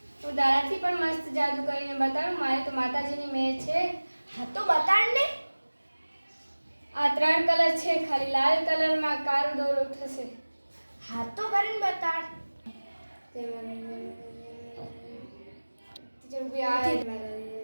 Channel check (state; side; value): inverted; both; correlation -1.00